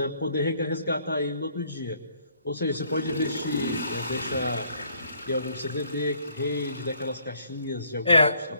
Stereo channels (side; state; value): both; inverted; correlation -0.64